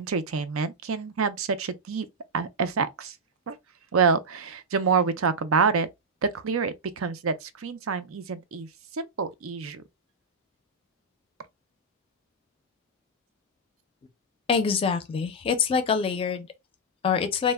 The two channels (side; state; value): both; normal; correlation -0.06